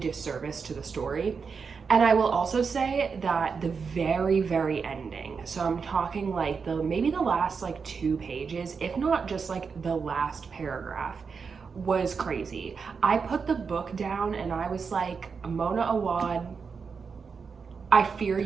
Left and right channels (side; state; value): left; quieter; 5.5 dB